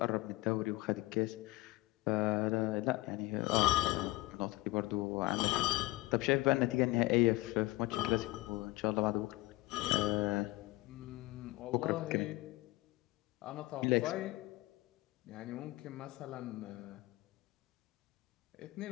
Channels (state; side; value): quieter; right; 20.8 dB